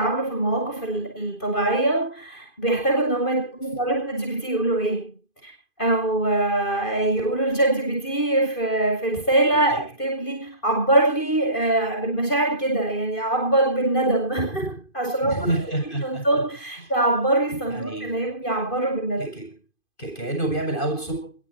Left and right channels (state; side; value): late; right; 2.5 ms